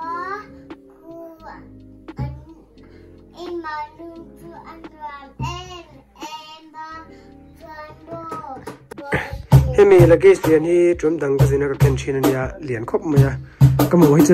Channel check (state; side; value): identical; both; correlation 1.00